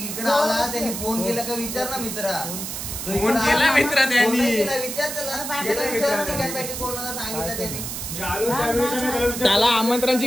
आला त्यांनी फोन केला का विचार ना मित्रा. फोन केला मित्र त्यांनी विचार त्याला की कोणाला सांगितलं त्यांनी. मी आलो त्यावेळेस आम्ही त्याला विचारलं. त्याला आमंत्रणाची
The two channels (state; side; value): noise; right; hiss, 6 dB below the sound